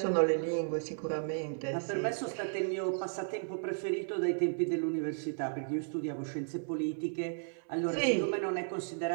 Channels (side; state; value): left; silent; 55 dB below the other